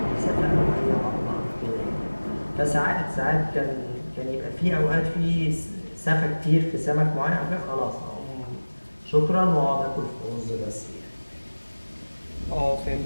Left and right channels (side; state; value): both; inverted; correlation -1.00